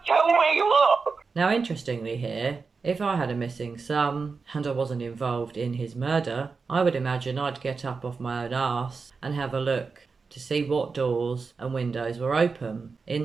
tell me what. Now interestingly here, if I had a missing son and I wasn't involved in his murder, I would imagine I'd get up off my own arse and have a look to see what doors and windows were open.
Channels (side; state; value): left; quieter; 4.7 dB